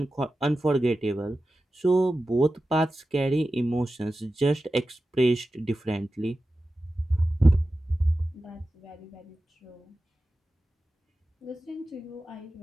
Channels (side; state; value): both; normal; correlation 0.93